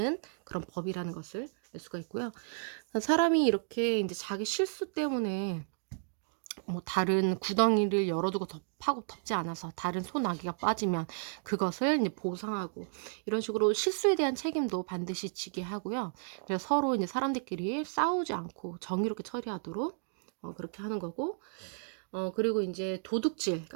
그런 법이라는 것을 알 수가 있고요. 사람이 이렇게 이제 자기 실수 때문에 뭐 다른 구덩이를 열어두고 파고 덮지 않아서 다른 소나기가 빠지면 그것을 이제 보상하고, 이런 식으로 실수에 대한 책임도 반드시 지게 하고요. 그래서 서로 이제 사람들끼리 싸우지 않고 정의롭게 처리하도록 그렇게 하는 거고, 그리고 이제 도둑질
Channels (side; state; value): left; silent; digital silence